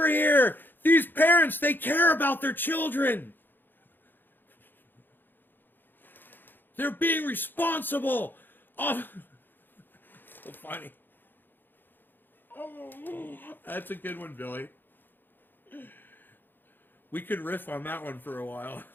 here! These parents, they care about their children! They're being responsible! Oh, so funny. Oh, that's a good one, Billy. We could riff on that one for a while.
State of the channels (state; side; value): late; right; 0.094 ms